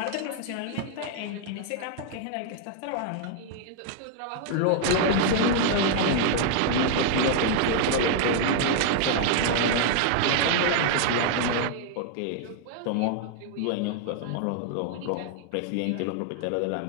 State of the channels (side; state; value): both; different; correlation 0.00